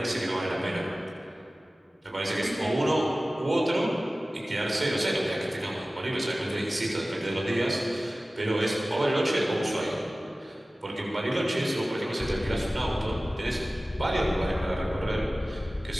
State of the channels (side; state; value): both; normal; correlation 0.97